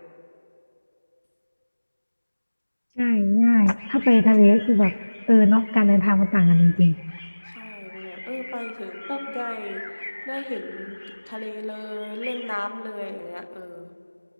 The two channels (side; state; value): both; inverted; correlation -1.00